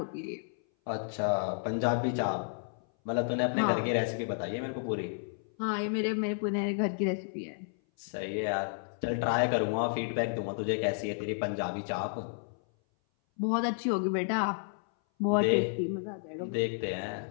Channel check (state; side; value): silent; right; 57 dB below the other